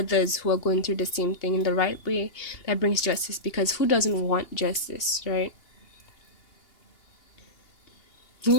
who are going through the same thing in the right way that brings justice, because who doesn't want justice, right?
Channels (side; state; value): right; late; 2.8 ms